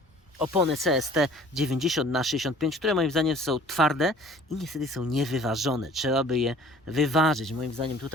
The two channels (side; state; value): both; normal; correlation 0.50